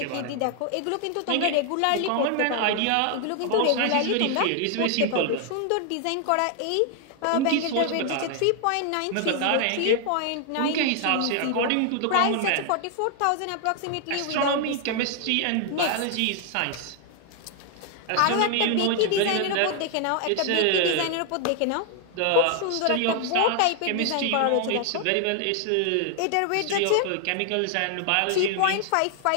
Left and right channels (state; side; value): different; both; correlation 0.00